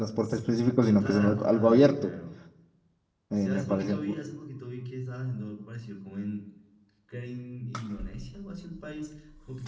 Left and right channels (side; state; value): both; identical; correlation 1.00